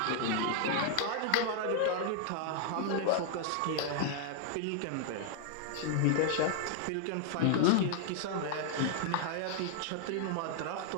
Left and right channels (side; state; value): both; different; correlation -0.01